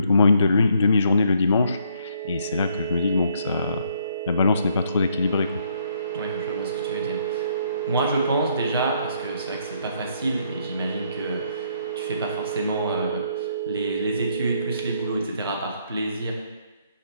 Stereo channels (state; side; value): inverted; both; correlation -0.69